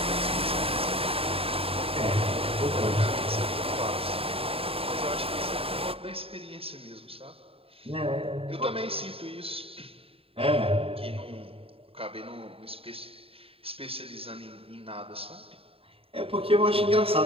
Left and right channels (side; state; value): left; late; 0.27 ms